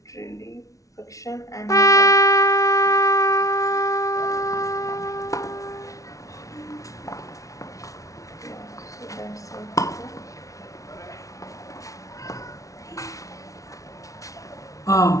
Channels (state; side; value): late; right; 0.16 ms